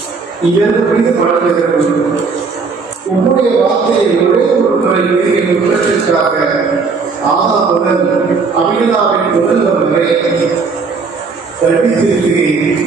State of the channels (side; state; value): left; quieter; 4.7 dB